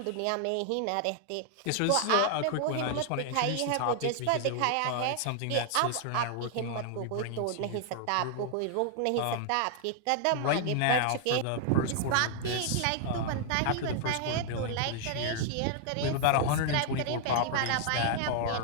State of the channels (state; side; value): different; both; correlation 0.00